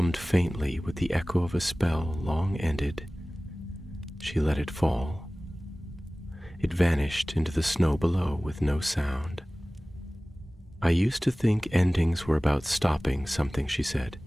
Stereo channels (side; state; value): both; normal; correlation 0.98